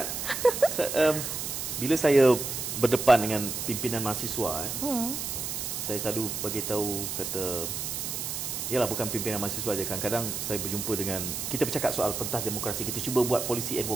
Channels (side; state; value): right; noise; hiss, 4 dB below the sound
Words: Bila saya berdepan dengan pimpinan mahasiswa, saya selalu bagi tahu, kata, yalah, bukan pimpinan mahasiswa je, kadang-kadang saya berjumpa dengan, kita bercakap soal pentas demokrasi, kita cuba buat policy